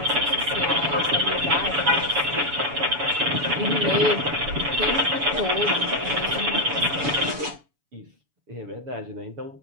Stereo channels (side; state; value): left; late; 7.0 ms